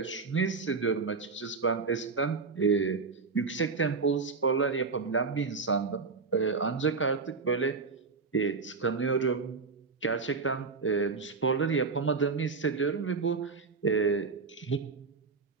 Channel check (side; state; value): left; quieter; 4.7 dB